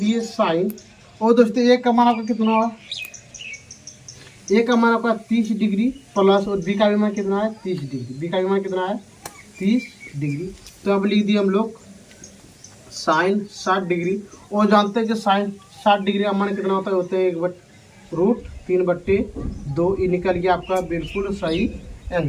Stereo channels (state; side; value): identical; both; correlation 1.00